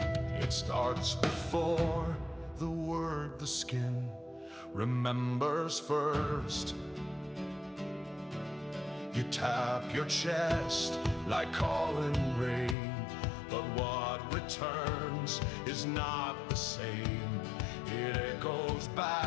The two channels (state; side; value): drops out; right; at 12.8 s